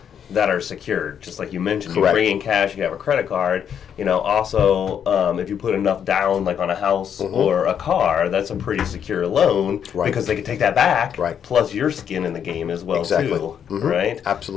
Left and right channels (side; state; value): right; quieter; 8.3 dB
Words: that are secured, just like you mentioned. You Correct. bring in cash, you have a credit card. Also, if you put enough down, like on a house or a car, that's a pretty secure loan because they can take that back. Right. Plus your skin in the game as well too. Right.